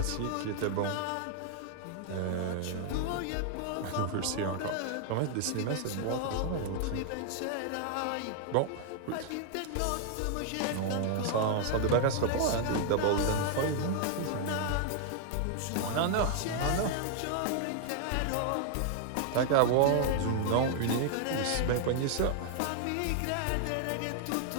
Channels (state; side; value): different; both; correlation 0.00